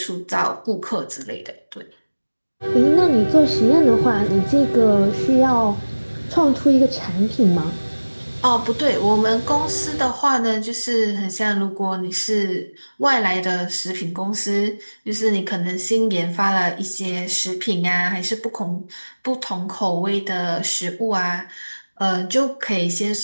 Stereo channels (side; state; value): both; inverted; correlation -1.00